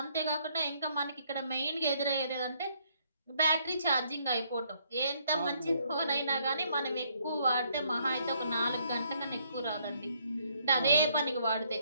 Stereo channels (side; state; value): both; inverted; correlation -0.69